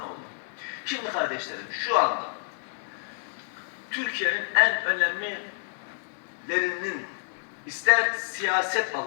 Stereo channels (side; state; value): right; silent; digital silence